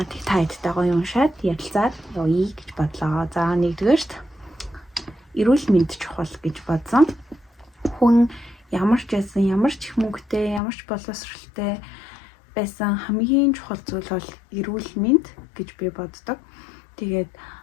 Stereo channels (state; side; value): drops out; right; at 10.6 s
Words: Тэг та хэдтэй гоё уншаад ярилцаад явъя гэж бодлоо. За нэгдүгээрт эрүүл мэнд чухал гэж бодсон. Хүн ямар ч байсан, ямар ч их мөнгөтэй, ямар ч боловсралтай байсан хамгийн чухал зүйл бол эрүүл мэнд гэж би боддог. Тэгээд